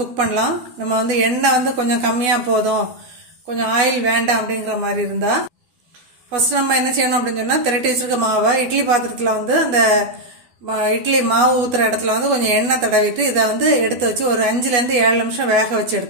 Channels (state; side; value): late; left; 12 ms